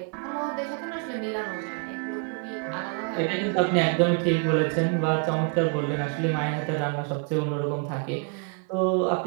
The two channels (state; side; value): quieter; left; 39.4 dB